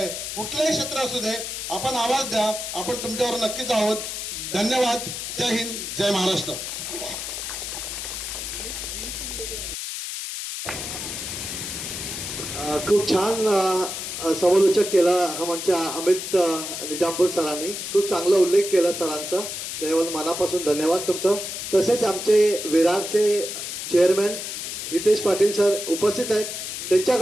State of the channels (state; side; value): noise; left; hiss, 6 dB below the sound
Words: कुठलंही क्षेत्र असू दे, आपण आवाज द्या. आपण तुमच्यावर नक्कीच आहोत. धन्यवाद. जय हिंद, जय महाराष्ट्र. खूप छान समालोचक केला आमच्या अमित निजामपूर सरांनी. खूप चांगला उल्लेख केला सरांचा, त्याबद्दल मनापासून धन्यवाद तुमचं. तसेच आमचे विरारचे चेअरमॅन हितेश पाटील सर उपस्थित आहेत.